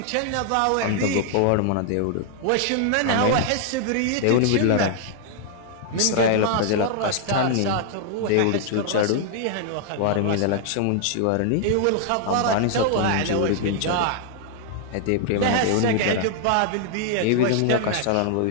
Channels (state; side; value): different; both; correlation 0.00